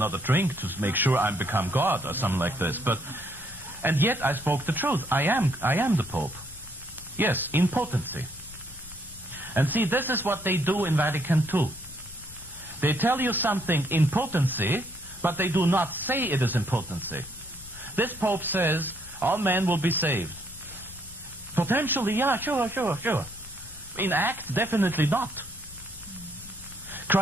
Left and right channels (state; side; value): noise; left; rumble, 19 dB below the sound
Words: drink to make sure I become God or something like this. And yet I spoke the truth. I am the Pope. Yes, in potency. And see, this is what they do in Vatican II. They tell you something in potency, but they do not say it is in potency. This Pope says all men will be saved. Potentially, yeah, sure. In act, definitely not.